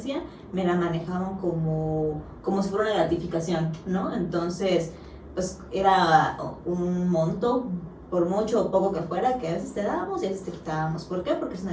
me la manejaban como si fuera una gratificación, ¿no? Entonces, pues era un monto, por mucho o poco que fuera, que a veces te dábamos y a veces te quitábamos. ¿Por qué? Porque es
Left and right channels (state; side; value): identical; both; correlation 1.00